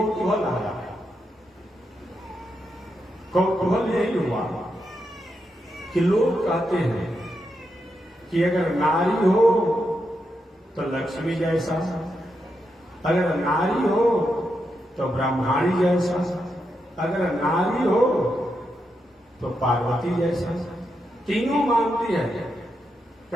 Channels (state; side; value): normal; both; correlation 0.84